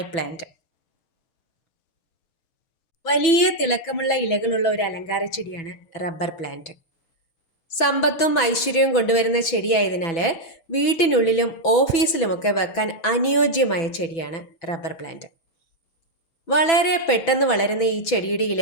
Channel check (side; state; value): right; late; 6.0 ms